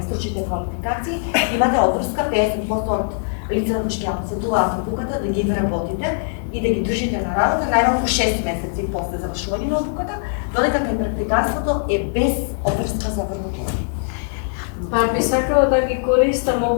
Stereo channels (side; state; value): right; silent; digital silence